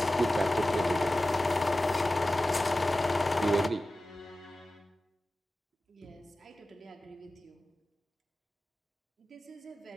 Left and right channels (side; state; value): both; normal; correlation 0.95